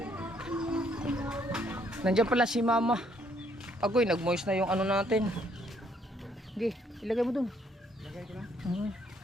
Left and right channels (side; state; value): both; normal; correlation 0.68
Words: Nandiyan pala si Mama. Agoy, nag-moist na yung ano natin. Sige, ilagay mo dun. Lagay ko na.